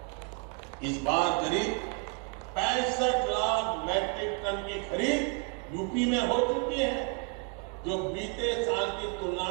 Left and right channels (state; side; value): quieter; left; 31.7 dB